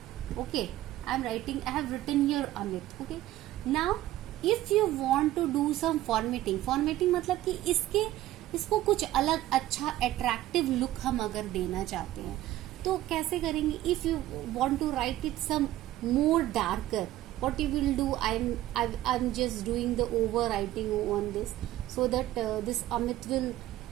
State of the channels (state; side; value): quieter; left; 14.8 dB